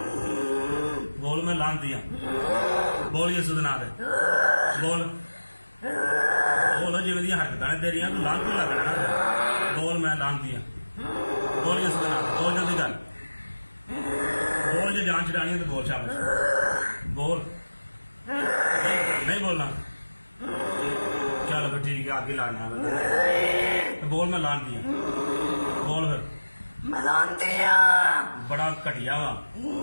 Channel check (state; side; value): inverted; both; correlation -1.00